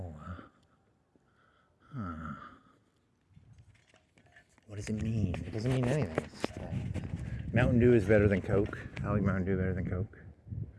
Huh. What does it mean? It doesn't mean anything. It's, Mountain Dew is better than Coke. I like Mountain Dew better than Coke.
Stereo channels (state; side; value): identical; both; correlation 1.00